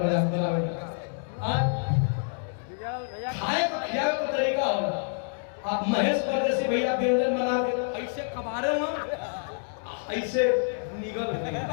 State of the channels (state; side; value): silent; right; 60 dB below the other